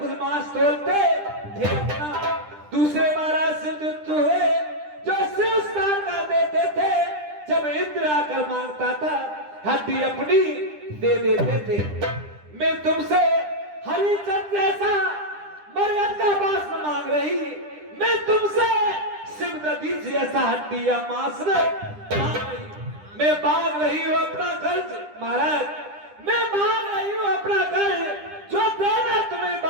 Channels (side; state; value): left; late; 10 ms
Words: मांस तोलते थे अपना, दूसरे महाराज सुस्त हुए जो शिव स्नान कर देते थे जब इंद्र आकर मांगता था, हड्डी अपनी दे देते थे। मैं तुमसे हरिचंद जैसा मरहत का मांस न मांग रही, मैं तुमसे सिमरदी जैसा हड्डी या मांस मांग रही। मैं मांग रही हूँ अपना कर्ज महाराज, मैं मांग रही हूँ अपना कर्ज, जो देना तुम्हें